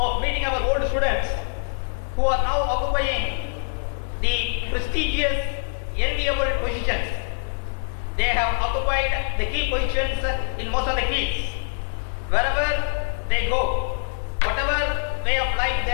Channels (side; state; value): right; silent; digital silence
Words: meeting our old students who are now occupying the prestigious, enviable positions. have occupied the key positions in most of the fields. Wherever they go, whatever way of life they